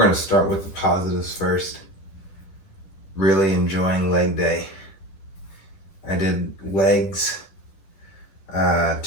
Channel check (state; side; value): late; right; 10 ms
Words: to start with the positives first. Really enjoying leg day. I did legs